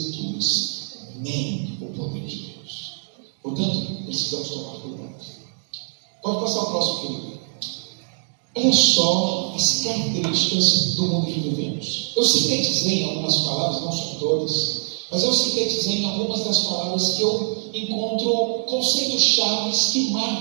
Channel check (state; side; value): silent; left; 63 dB below the other